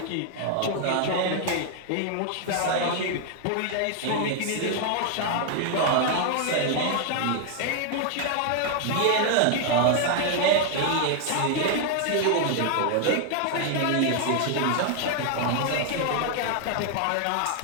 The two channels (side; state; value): both; different; correlation 0.00